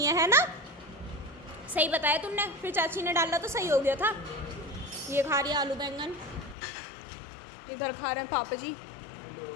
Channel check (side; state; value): right; drops out; at 6.6 s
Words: है ना, सही बताया तुमने, फिर चाची ने डाला तो सही हो गया था। ये खा रही है आलू बैंगन, इधर खा रहे हैं पापा जी।